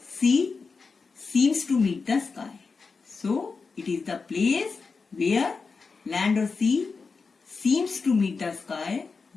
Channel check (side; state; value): right; quieter; 4.7 dB